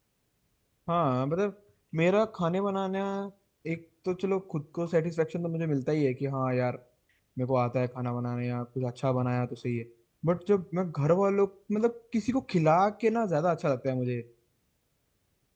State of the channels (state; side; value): identical; both; correlation 1.00